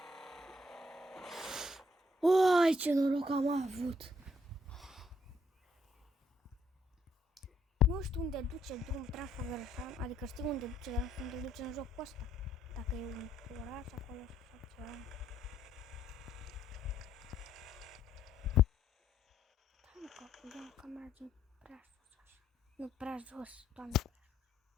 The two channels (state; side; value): normal; both; correlation 0.70